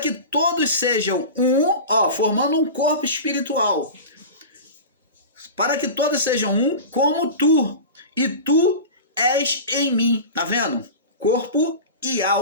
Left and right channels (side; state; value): both; inverted; correlation -0.31